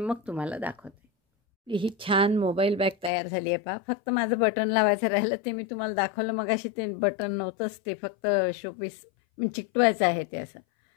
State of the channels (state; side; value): drops out; right; at 3.1 s